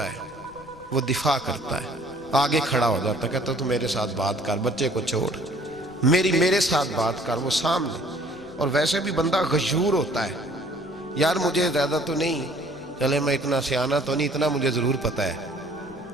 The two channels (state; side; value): noise; left; rumble, 25 dB below the sound